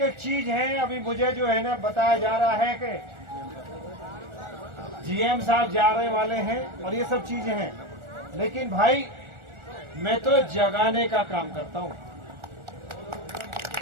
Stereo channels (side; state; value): left; late; 1.4 ms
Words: एक चीज है। अभी मुझे जो है ना बताया जा रहा है कि जीएम साहब जा रहे वाले हैं और ये सब चीजें हैं। लेकिन भाई मैं तो जगाने का काम करता हूं,